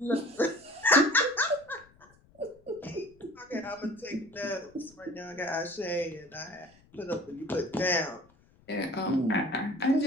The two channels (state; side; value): noise; left; rumble, 29 dB below the sound